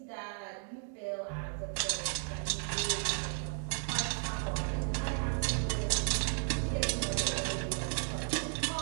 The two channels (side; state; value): left; silent; 55 dB below the other